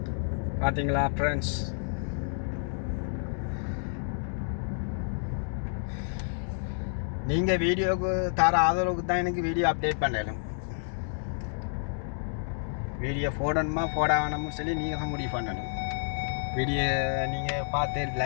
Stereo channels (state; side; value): silent; right; digital silence